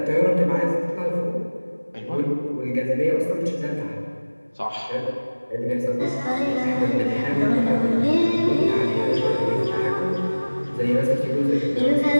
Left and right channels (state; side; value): inverted; both; correlation -1.00